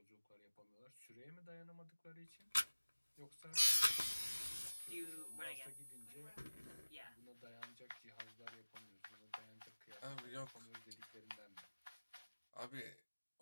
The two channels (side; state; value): both; inverted; correlation -1.00